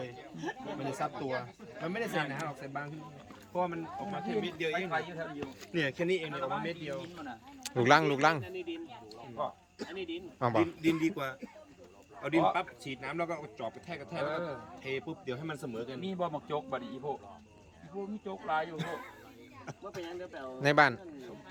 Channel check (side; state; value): both; identical; correlation 1.00